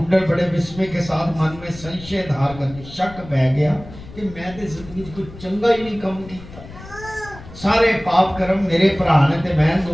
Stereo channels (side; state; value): left; noise; rumble, 17 dB below the sound